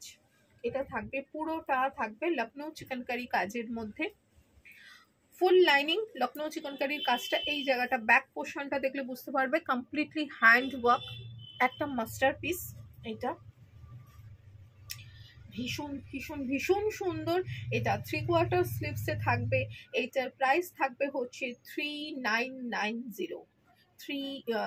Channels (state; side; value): identical; both; correlation 1.00